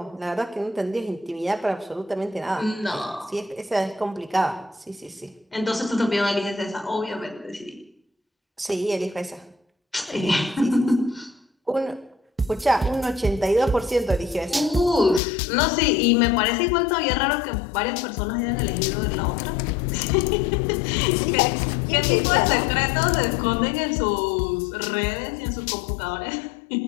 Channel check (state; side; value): drops out; right; at 15.2 s